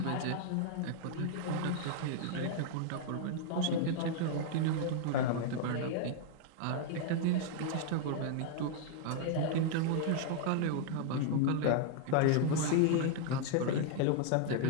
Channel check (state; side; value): different; both; correlation 0.00